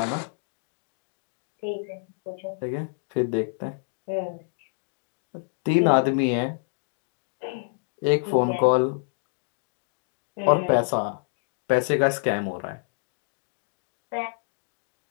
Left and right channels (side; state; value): right; silent; digital silence